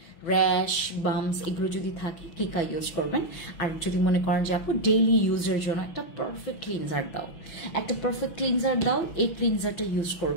র্যাশ, বামস এগুলো যদি থাকে কিকা ইউজ করবেন। আর যদি মনে করেন যে আপু ডেইলি ইউজের জন্য একটা পারফেক্ট ক্লিনজার দাও, এই ক্লিনজারটা ইউজ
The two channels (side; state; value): right; late; 6.0 ms